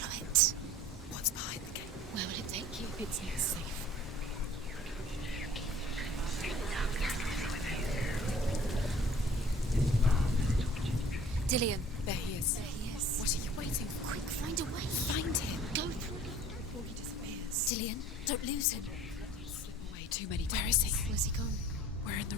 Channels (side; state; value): both; normal; correlation 0.49